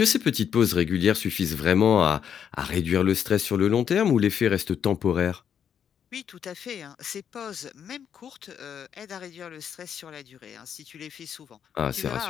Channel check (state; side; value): quieter; right; 8.3 dB